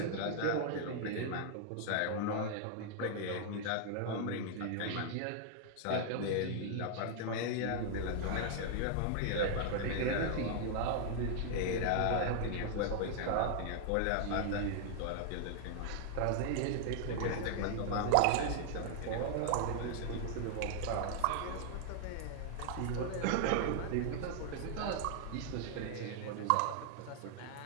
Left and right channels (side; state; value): both; different; correlation -0.01